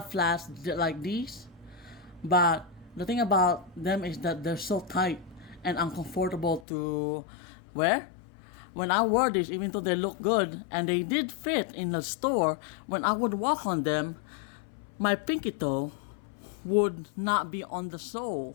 flats like these, but the thing about them is that they're so tight and uncomfortable to wear. When I wore these, even though they look good and they did fit in the store, when I would walk on them, my pinky toe would not be on the sole.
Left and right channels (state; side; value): drops out; right; at 6.7 s